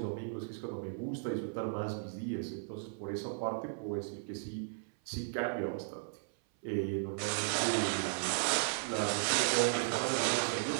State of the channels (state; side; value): silent; left; 54 dB below the other